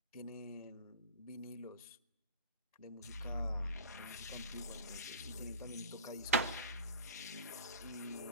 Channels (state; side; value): inverted; both; correlation -0.32